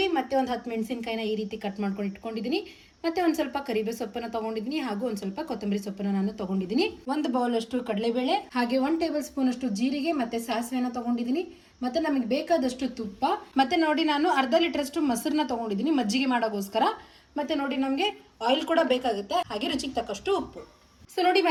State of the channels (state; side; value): identical; both; correlation 1.00